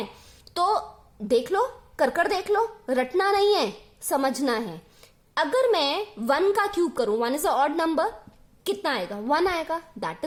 तो देख लो, कर देख लो, रटना नहीं है, समझना है. अगर मैं 1 का क्यूब करूं, 1 इज अ ऑड नंबर, कितना आएगा? 1 आएगा. That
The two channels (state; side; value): identical; both; correlation 1.00